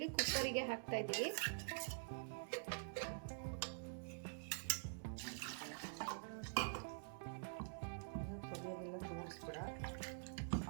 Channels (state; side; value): silent; left; digital silence